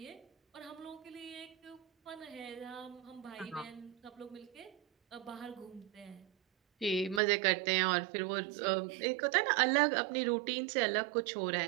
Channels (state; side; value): drops out; left; at 7.2 s